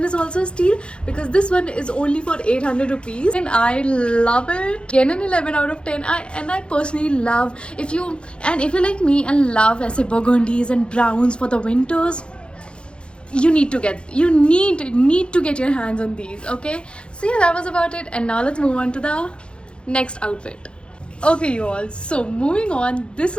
is also a steal, because this one is only for 800 rupees, and I love it. Again, an 11 out of 10. I personally love, if you like me and love, I say, burgundies and browns for the winters, you need to get your hands on these. Okay, so yeah, that was about it. And now let's move on to the next outfit. Okay, you all, so moving on, this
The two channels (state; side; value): late; right; 0.056 ms